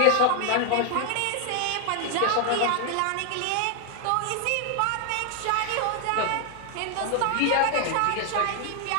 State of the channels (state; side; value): different; both; correlation 0.00